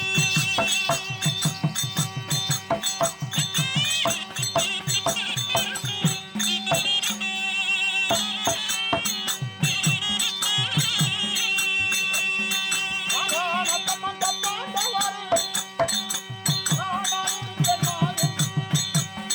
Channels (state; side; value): identical; both; correlation 1.00